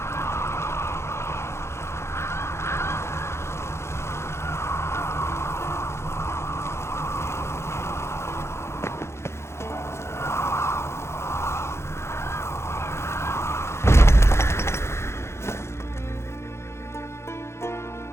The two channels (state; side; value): late; right; 0.13 ms